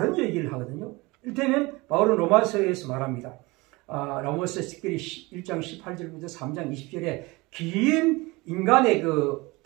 얘기를 하거든요. 이를테면 바울은 로마서에서 말합니다. 로마서 특별히 1장 18절부터 3장 20절에 긴 인간의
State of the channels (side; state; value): left; quieter; 23.5 dB